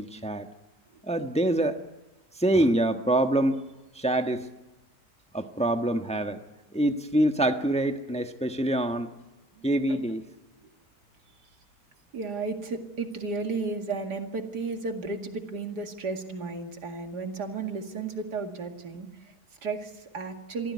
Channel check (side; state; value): both; normal; correlation 0.59